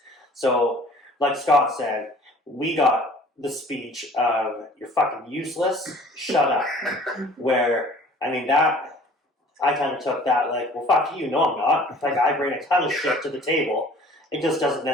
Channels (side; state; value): both; normal; correlation 0.50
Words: So, like Scott said, we got the speech of, you're fucking useless, shut up. Where, that, I kind of took that like, well, fuck you, no I'm not. Like, I bring a ton of shit to the table. It just doesn't